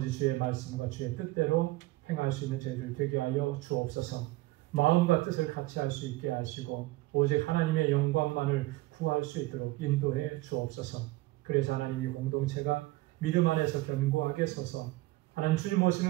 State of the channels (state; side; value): quieter; left; 19.3 dB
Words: 주의 말씀과 주의 뜻대로 행할 수 있는 저희들 되게 하여 주옵소서. 마음과 뜻을 같이 할 수 있게 하시고 오직 하나님의 영광만을 구할 수 있도록 인도해 주옵소서. 그래서 하나님이 공동체가 믿음 안에서 견고하게 서서 하나님 주님